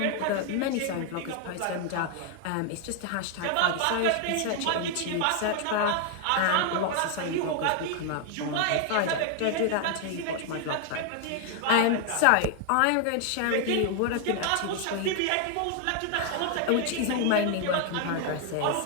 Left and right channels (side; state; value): both; different; correlation 0.00